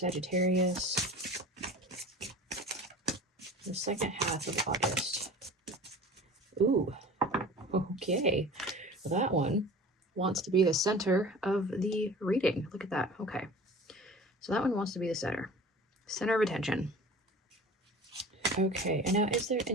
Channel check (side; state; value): both; normal; correlation 0.40